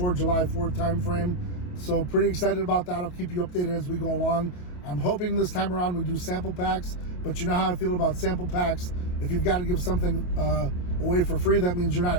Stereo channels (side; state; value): right; late; 28 ms